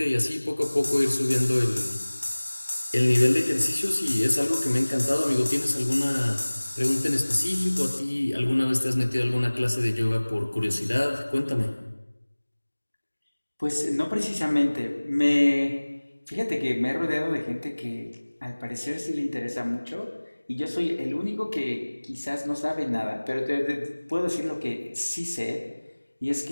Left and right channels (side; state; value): both; inverted; correlation -1.00